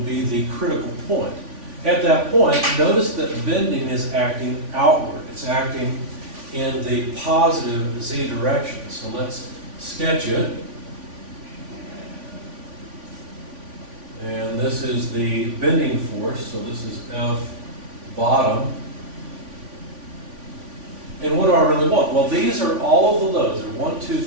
be the critical point. At that point, notice that bending is acting outward. It's acting in the positive Z direction. So let's sketch it. And this is the bending force, so this is F bottom. And what do I really want? Well, these are all of the loads. There are 1, 2,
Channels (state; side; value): late; left; 3.5 ms